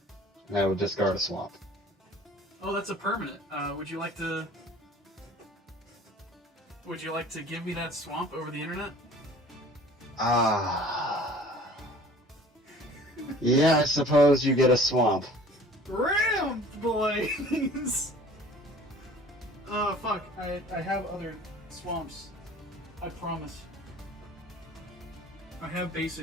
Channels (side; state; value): both; normal; correlation 0.48